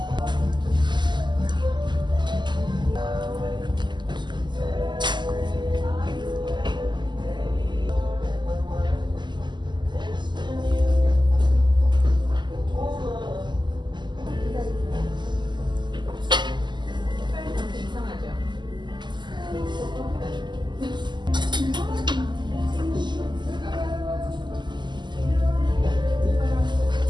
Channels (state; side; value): late; left; 0.21 ms